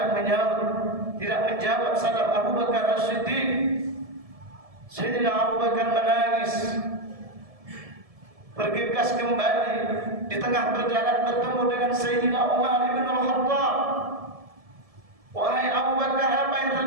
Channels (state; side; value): late; left; 1.7 ms